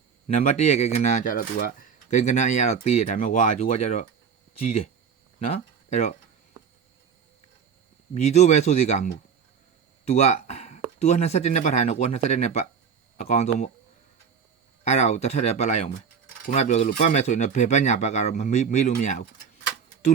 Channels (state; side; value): quieter; left; 6.8 dB